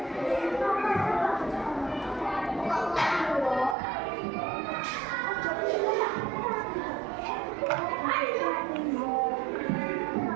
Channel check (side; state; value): left; drops out; at 3.8 s